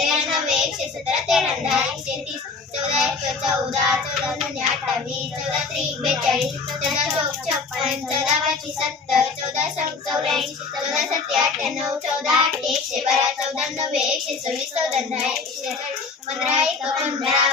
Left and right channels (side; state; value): right; quieter; 4.5 dB